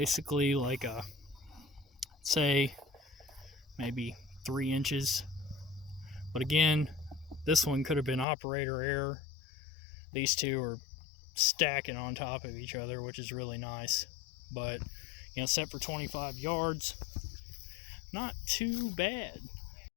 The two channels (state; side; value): drops out; right; at 8.2 s